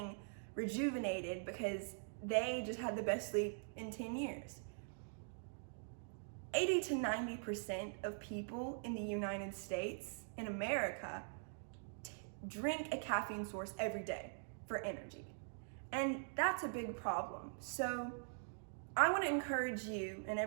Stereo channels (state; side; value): silent; left; digital silence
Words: rejuvenated because they just had the best sleep in 10 years. 80 to 90% of people in the United States, in America, drink a caffeine source every day for energy. And that's a big problem. So I want to encourage you and